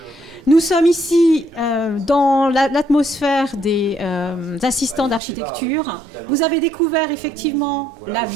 Nous sommes ici dans l'atmosphère des assistants d'architecture. Vous avez découvert effectivement la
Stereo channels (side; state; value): left; drops out; at 5.2 s